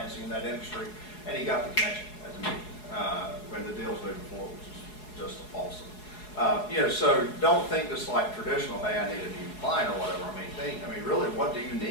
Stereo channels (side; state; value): right; late; 4.7 ms